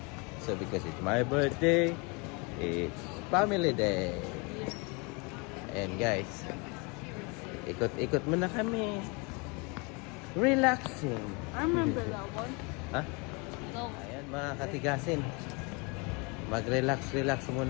So because it's my birthday, it's family day. And guys, ikot-ikot muna kami. Relaxing. I remember that one. Ha? No. Ayan mga katigasin. Mag-relax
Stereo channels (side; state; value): right; quieter; 30.2 dB